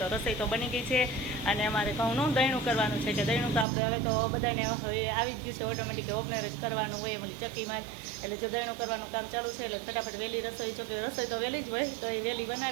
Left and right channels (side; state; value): left; drops out; at 3.7 s